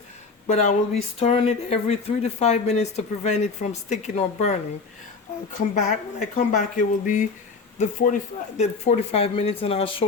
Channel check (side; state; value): right; quieter; 4.5 dB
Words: But I will be stirring it every 3 to 5 minutes to prevent it from sticking or burning. I'll come back. When I come back, it will be the 45 minutes, and I'll